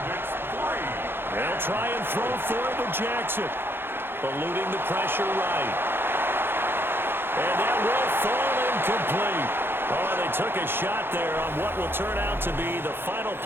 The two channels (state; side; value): late; left; 0.10 ms